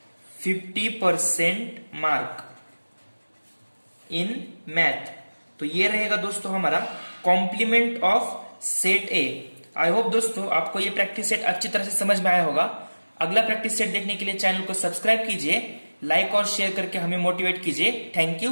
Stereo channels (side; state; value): both; inverted; correlation -1.00